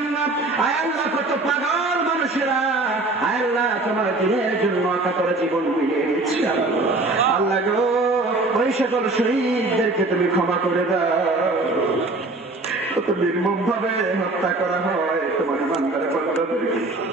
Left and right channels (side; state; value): left; quieter; 3.1 dB